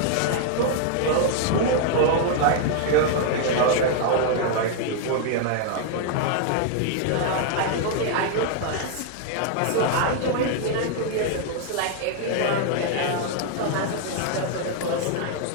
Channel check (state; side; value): different; both; correlation 0.00